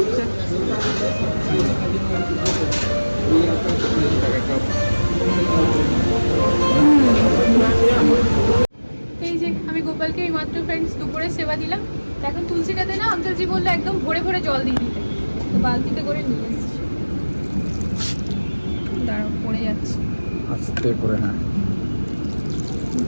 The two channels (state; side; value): inverted; both; correlation -1.00